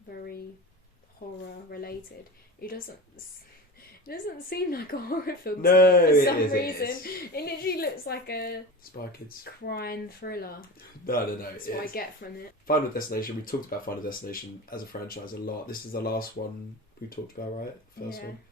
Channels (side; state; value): both; normal; correlation 0.30